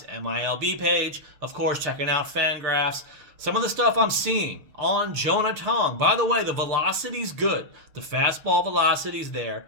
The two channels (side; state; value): left; late; 6.7 ms